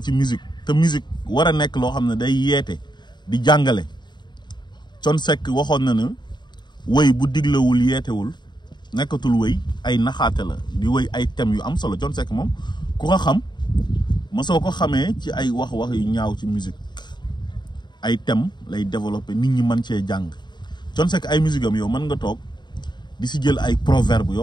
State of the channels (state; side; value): late; right; 0.21 ms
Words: ci musique te musique war a nekk loo xam ne day yeete di jàngale Thione Seck waxoon na ne wëy bu diglewul yeetewul nekkatul wëy ay naxaate la di wëy ay thèmes yu am solo Thione Seck moom ku ko xam ma soo ko xamee ci ay wax yu ñaaw ci musique ay thèmes lay développer nit ñi mën cee jàng Thione Seck ay musique am yow mën nga toog di si jël ay proverbe